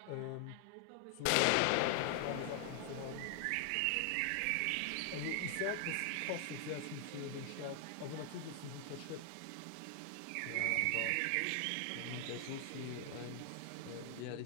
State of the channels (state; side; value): different; both; correlation 0.00